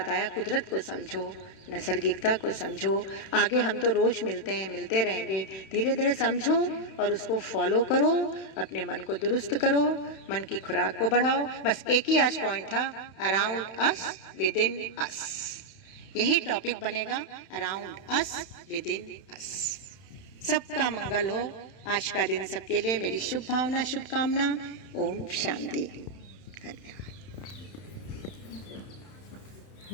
कुदरत को समझो, नैसर्गिकता को समझो। आगे हम तो रोज मिलते हैं, मिलते रहेंगे, धीरे धीरे समझो और उसको फॉलो करो, अपने मन को दुरुस्त करो, मन की खुराक को बढ़ाओ। बस एक ही आज पॉइंट था, अराउंड अस, विद इन अस। यही टॉपिक बनेगा, अराउंड अस, विद इन अस। सबका मंगल हो। आज का दिन सबके लिए मेरी शुभ भावना, शुभकामना। ओम शांति। धन्यवाद।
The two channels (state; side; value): late; right; 31 ms